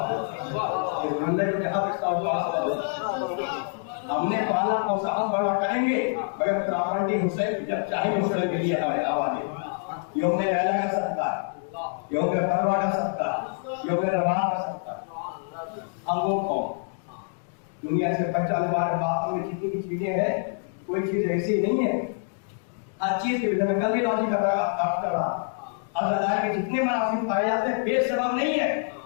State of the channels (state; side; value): silent; right; 61 dB below the other